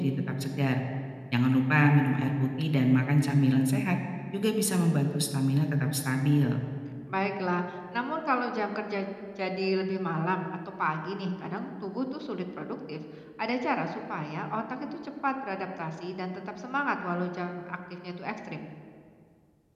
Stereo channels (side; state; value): both; identical; correlation 1.00